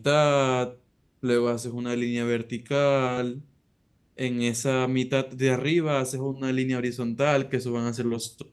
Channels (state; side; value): identical; both; correlation 1.00